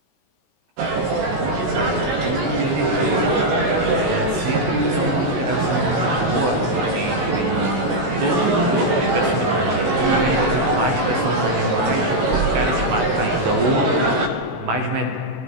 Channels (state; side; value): late; left; 17 ms